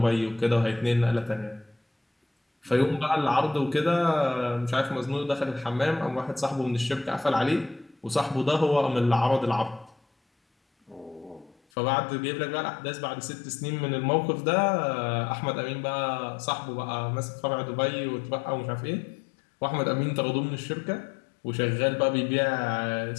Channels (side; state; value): right; drops out; at 11.6 s